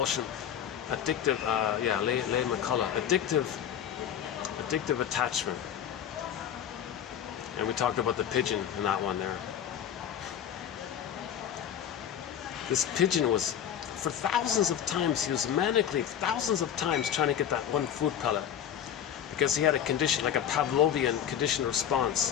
addictive. Yeah, Leigh McCullough, addictive attachment. And we talked about the pigeon in that one there. This pigeon was, for thousands of times, he was manically, thousands of times trying to get that one food pellet. Because he had a condition, like a Pavlovian conditioned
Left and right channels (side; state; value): right; quieter; 9.5 dB